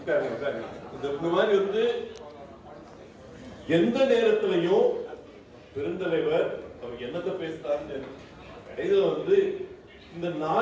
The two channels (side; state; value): both; identical; correlation 1.00